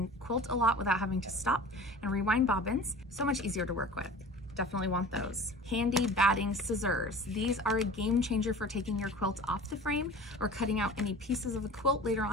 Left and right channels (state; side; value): normal; both; correlation 0.39